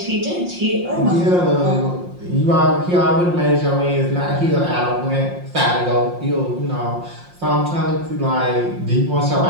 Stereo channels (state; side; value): late; left; 5.6 ms